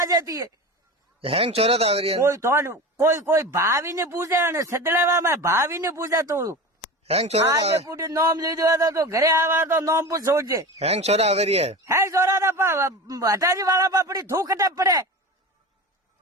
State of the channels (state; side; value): normal; both; correlation 0.29